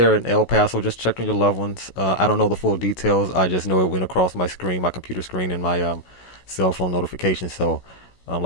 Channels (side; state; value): right; late; 16 ms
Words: in El Paso, just check on your loved ones. I don't know the full details. I just know it went across my screen, my computer screen, and my cell phone notification. So